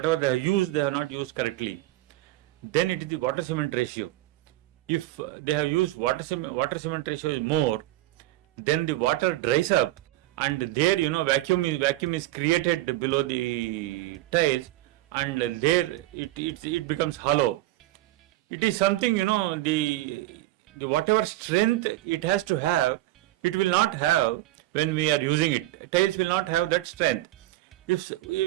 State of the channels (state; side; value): quieter; left; 16.5 dB